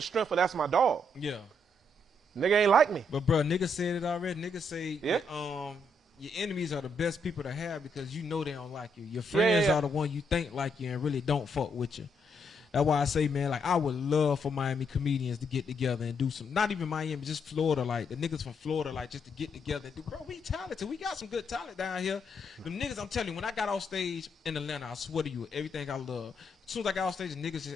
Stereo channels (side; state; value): both; normal; correlation 0.76